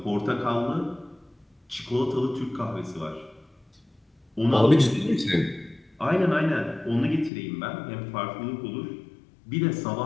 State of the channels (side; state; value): right; drops out; at 7.3 s